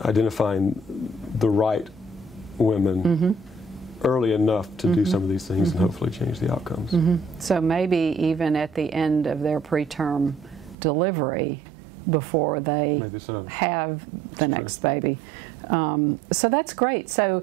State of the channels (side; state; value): left; drops out; at 10.8 s